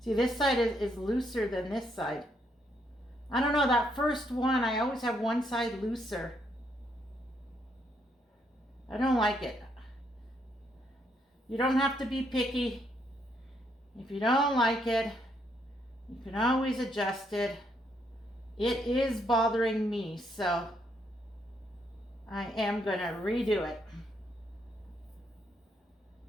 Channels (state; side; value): normal; both; correlation 0.74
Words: See, this side is looser than this side. I don't know, that first one, I always have one side looser. I don't like it. You don't have to be picky. If you don't like it, you can always adjust it. It is bothering me, so I am gonna redo it.